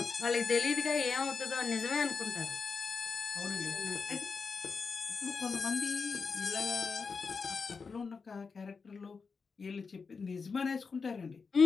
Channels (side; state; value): right; quieter; 5.0 dB